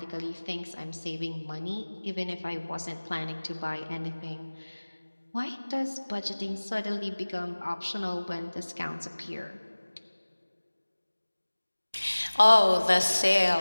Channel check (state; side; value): inverted; both; correlation -1.00